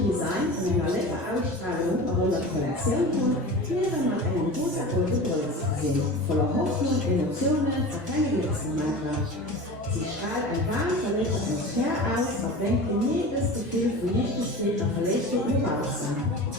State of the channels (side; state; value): both; normal; correlation 0.34